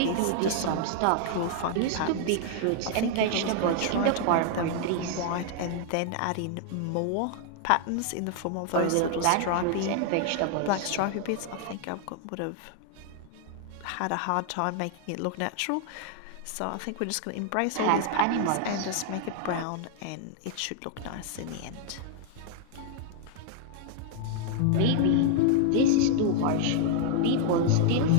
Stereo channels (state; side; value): different; both; correlation 0.00